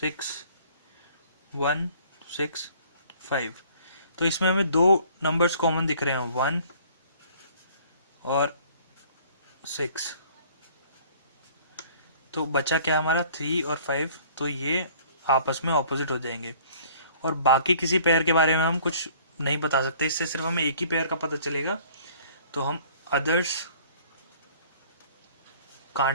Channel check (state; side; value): inverted; both; correlation -0.53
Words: 1, 6, 5, तो इसमें हमें 2 नंबर्स कॉमन दिख रहे हैं, 1 और 6। तो बचा क्या हमारा 3 और 5, तो ये आपस में ऑपोजिट हो जाएंगे। और बाकी किसी पेयर के बारे में हम कुछ नहीं बता सकते, इससे सिर्फ हमें एक ही पेयर का पता चलेगा। तो हम others